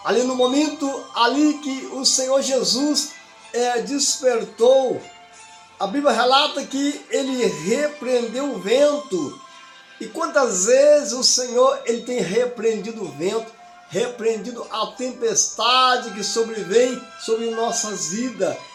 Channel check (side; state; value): both; identical; correlation 1.00